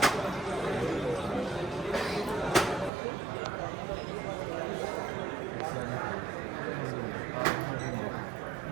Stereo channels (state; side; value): drops out; left; at 2.9 s